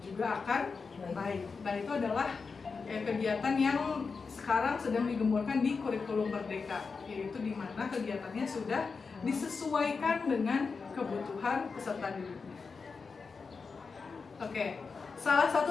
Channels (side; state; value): right; quieter; 4.9 dB